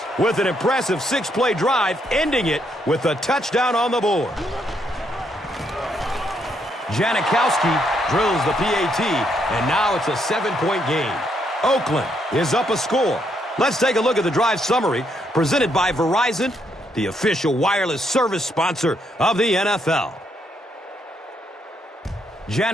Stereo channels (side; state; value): both; normal; correlation 0.75